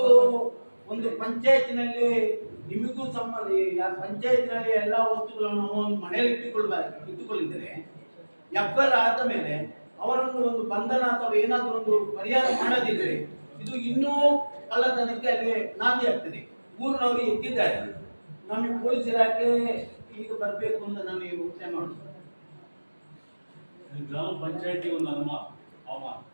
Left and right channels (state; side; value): inverted; both; correlation -1.00